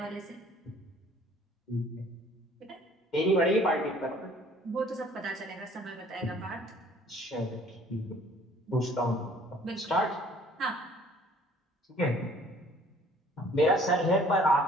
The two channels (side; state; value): both; normal; correlation 0.56